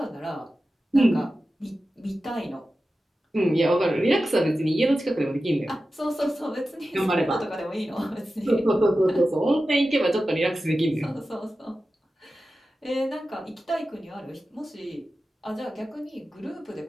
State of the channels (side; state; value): both; normal; correlation 0.93